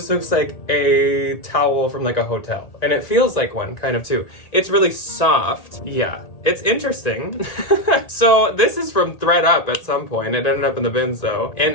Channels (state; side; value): late; right; 1.9 ms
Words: looks like a towel from like a hotel, and it feels like one kind of too. It's really soft. Yeah, it's interesting. So this is from ThredUp at some point. It ended up in the bins though,